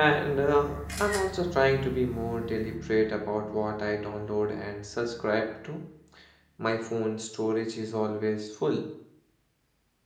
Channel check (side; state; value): both; identical; correlation 1.00